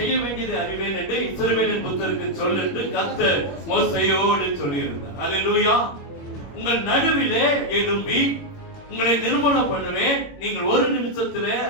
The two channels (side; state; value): right; late; 21 ms